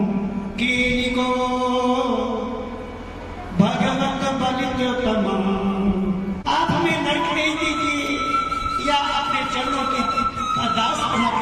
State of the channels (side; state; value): both; identical; correlation 1.00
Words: कीनी को भगवत बलित तमाम। आप हमें नरक नहीं दीजिए या अपने चरणों के दास बना